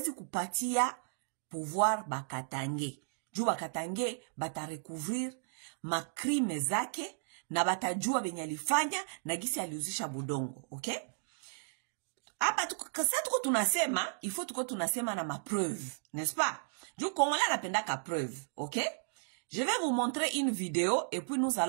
kupatia pouvoir bakatange. Juu bakatange batarecouvrir makrime zake, na batajua benye alifanya na gisi aliuzisha budongo. Okay? Hapa kasa tuko tunasema, il faut tuko tunasema na ma preuve, n'est-ce pas? Juu Congolais anapenda ka preuve. Okay? Je vais vous montrer une vidéo et puis nous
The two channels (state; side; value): silent; left; digital silence